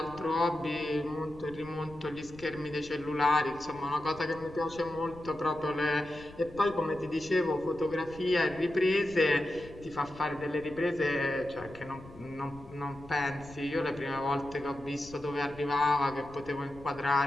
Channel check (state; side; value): noise; left; rumble, 19 dB below the sound